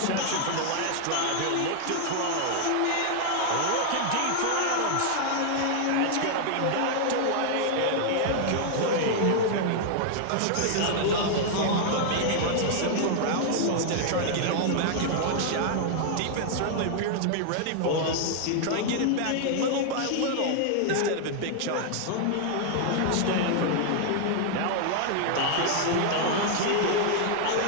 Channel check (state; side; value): different; both; correlation -0.01